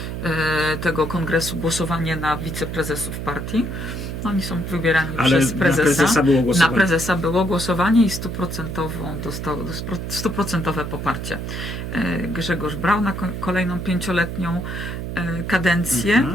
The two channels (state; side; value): noise; right; hum, 5 dB below the sound